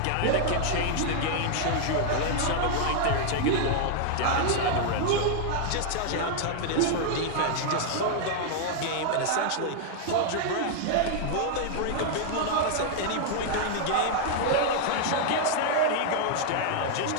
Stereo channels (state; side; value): different; both; correlation 0.00